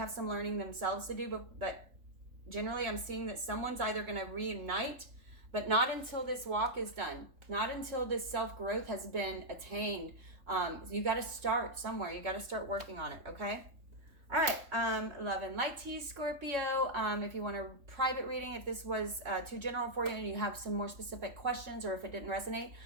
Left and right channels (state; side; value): late; left; 3.6 ms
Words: some learning themselves to do, but generally I'm seeing that someone's either going to reunite, but not until this walk is done, not until this self-growth has been attained. You got to start somewhere. You got to start working on it, okay? All right, love and light to you, Scorpio. If you want a private reading, if this was too general for you and you have some more specific questions, or if it didn't resonate,